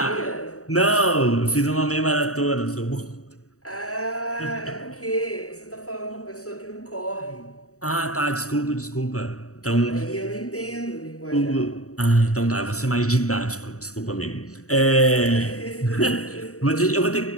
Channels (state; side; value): late; right; 0.65 ms